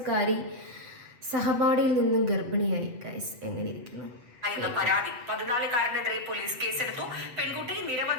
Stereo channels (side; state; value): left; late; 7.9 ms